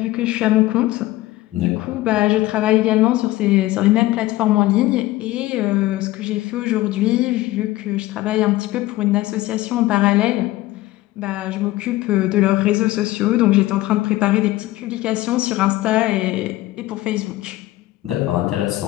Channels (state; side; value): quieter; right; 17.2 dB